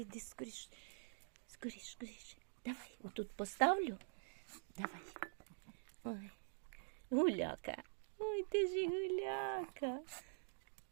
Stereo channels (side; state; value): left; silent; digital silence